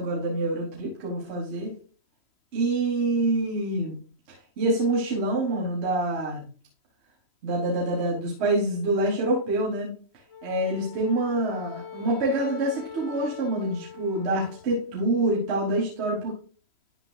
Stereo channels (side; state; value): left; late; 3.0 ms